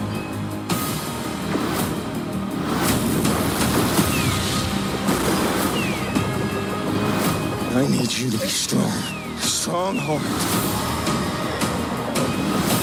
I need you to be strong. Strong heart.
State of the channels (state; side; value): identical; both; correlation 1.00